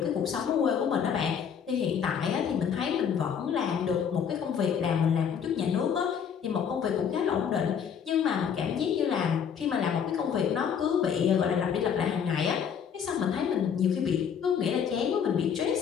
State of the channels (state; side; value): quieter; right; 7.6 dB